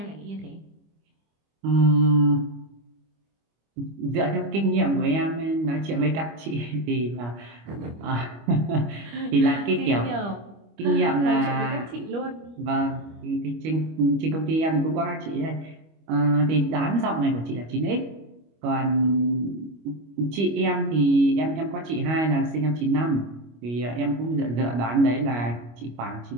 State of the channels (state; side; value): late; left; 25 ms